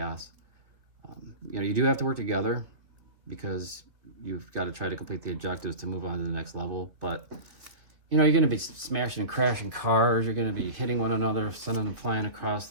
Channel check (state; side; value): late; left; 2.7 ms